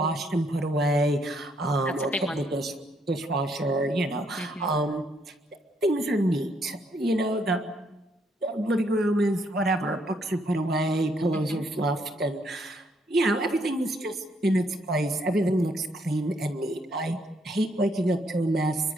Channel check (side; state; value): both; normal; correlation 0.72